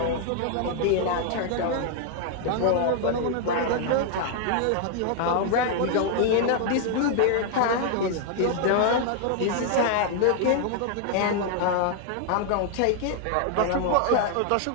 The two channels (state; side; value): different; both; correlation 0.00